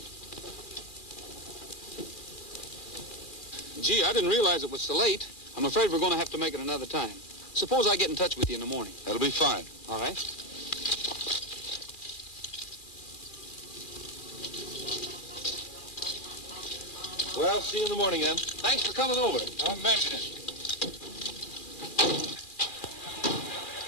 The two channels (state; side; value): late; right; 2.4 ms